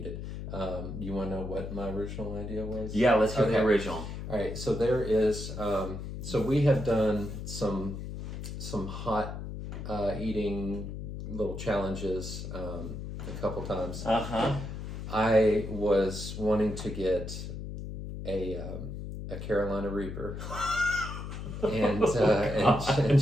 You want to know what my original idea was? Yeah, let's hear the original. All right, so there is. So we have done some hot eating little challenges a couple times. I was wanting to get a Carolina Reaper and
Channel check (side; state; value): left; noise; hum, 7 dB below the sound